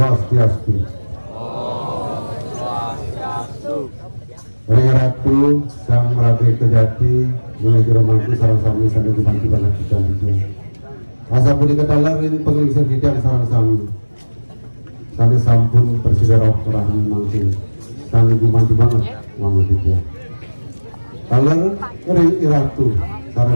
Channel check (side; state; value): both; inverted; correlation -1.00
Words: Om Swastiastu. Ratu Sang Rabe Kejati menuju romangku sarang sami sampai dibantu banget kita itu. Asa pun diketahuin pengelisir bidang sarang sami. Sami sampun Presiden Rahmi mangkin. Sami dibantu banget uang kita. Kaler Ratu